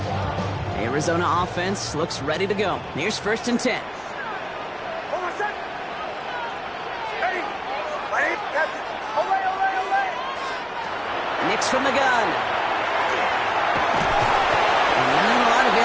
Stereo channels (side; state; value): both; identical; correlation 1.00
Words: Arizona offense looks ready to go. Here's 1st and 10. Nix from the gun. And not a lot